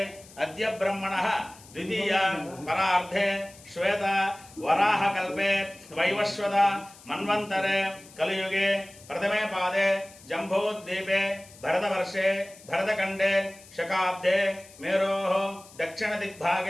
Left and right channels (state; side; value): noise; left; hiss, 22 dB below the sound